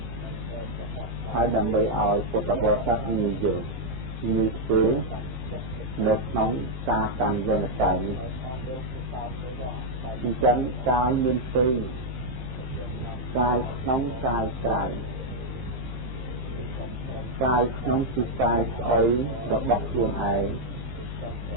ហើយដើម្បីឲ្យពុទ្ធបរិស័ទងាយយល់ងាយធ្វើ nước nóng xa cầm dân là cảnh chân cái nguyên phi cái nóng cái trái cái nóng chỉ cái ấy có bọc luôn ấy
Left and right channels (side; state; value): left; late; 15 ms